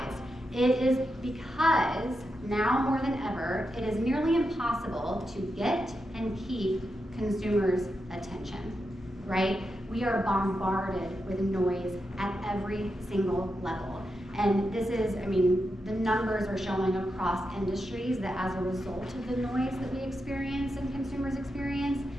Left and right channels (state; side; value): normal; both; correlation 0.87